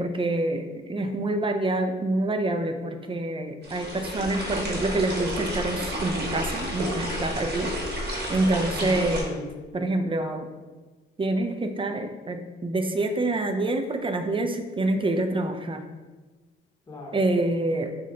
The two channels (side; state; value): both; normal; correlation 0.62